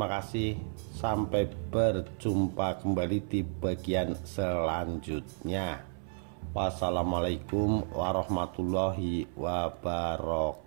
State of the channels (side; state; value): left; silent; 56 dB below the other